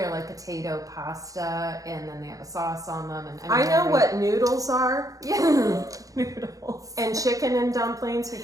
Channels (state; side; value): late; left; 0.17 ms